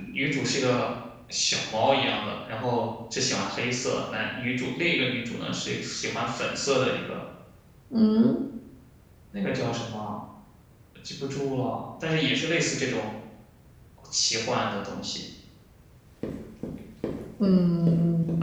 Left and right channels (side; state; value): both; identical; correlation 1.00